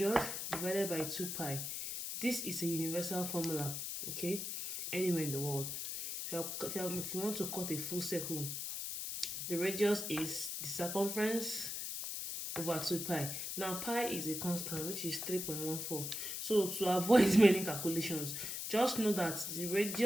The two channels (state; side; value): noise; left; hiss, 4 dB below the sound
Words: divided by 2 pi. This is a universal formula, okay, anywhere in the world. If you want to cut a full circle, the radius is the circumference over 2 pi. Now pi is a constant, which is 3.14. So to avoid many calculations, just know that the